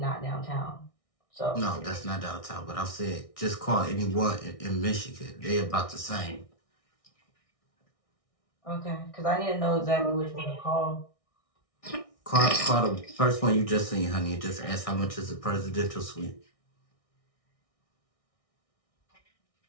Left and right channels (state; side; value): late; right; 1.6 ms